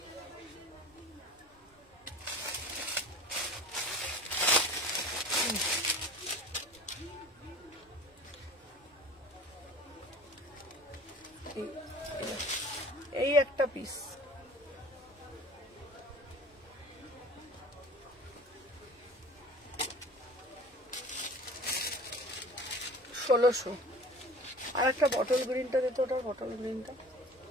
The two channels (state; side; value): normal; both; correlation 0.42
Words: এই একটা পিস। 1600। আর একটা বটল গ্রিনটা দিত, ওটার বটল গ্রিনটা।